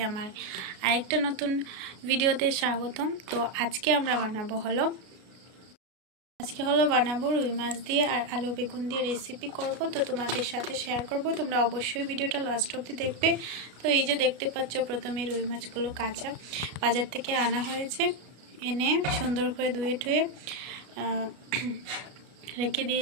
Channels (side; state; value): left; late; 33 ms